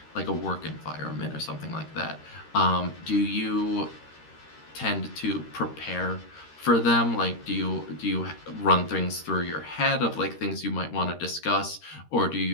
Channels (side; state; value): right; late; 13 ms